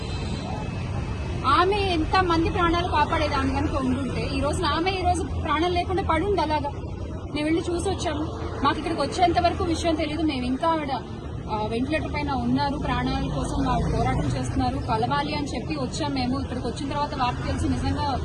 ఆమె ఎంత మంది ప్రాణాలు కాపాడేదాన్ని కనుక ఉండుంటే ఈ రోజున ఆమె ఈ రోజు ప్రాణాలు లేకుండా పడుంది. అలాగా మేము వెళ్ళి చూసి వచ్చాము. మాకు ఇక్కడికి వచ్చేంత వరకు విషయం తెలియదు. మేము ఇంకా ఆవిడ వెంటిలేటర్ పైన ఉన్నారు, ప్రాణాల కోసం వాళ్ళు పోరాటం చేస్తున్నారు, కలవాలి అని చెప్పి వచ్చాం. మేము ఇక్కడికి వచ్చిన తర్వాత వార్త తెలిసి నిజంగా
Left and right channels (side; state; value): both; identical; correlation 1.00